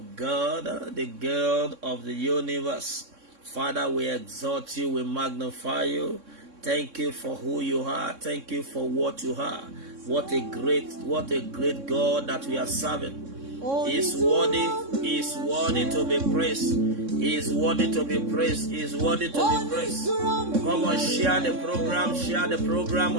God, the God of the universe. Father, we exalt you. We magnify you. Thank you for who you are. Thank you for what you are. What a great God that we are serving. He is worthy. He is worthy to be praised. He is worthy to be praised. He is worthy to be praised. Come on, share the program. Share the program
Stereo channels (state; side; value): late; left; 3.6 ms